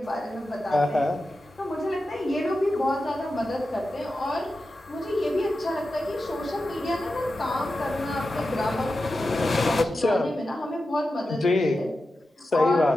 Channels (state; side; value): normal; both; correlation 0.91